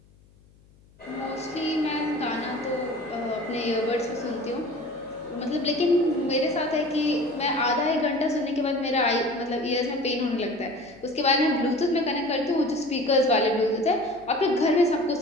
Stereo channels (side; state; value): left; noise; hum, 29 dB below the sound